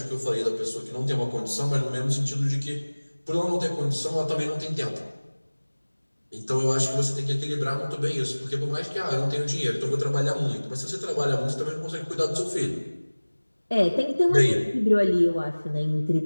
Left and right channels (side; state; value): both; inverted; correlation -1.00